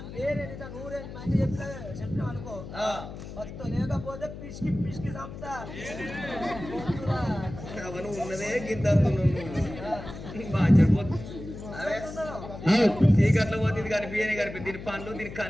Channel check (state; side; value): noise; left; hum, 11 dB below the sound